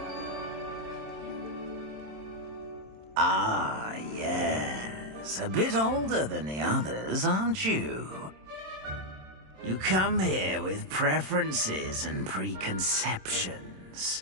Ah, yes. A bit older than the others, aren't you? You come here with preferences and preconceptions.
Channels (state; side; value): late; left; 27 ms